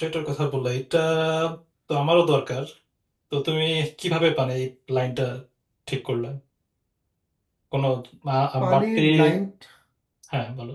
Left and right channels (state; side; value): identical; both; correlation 1.00